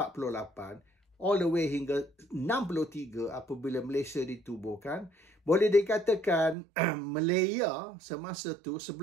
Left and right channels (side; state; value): left; drops out; at 6.6 s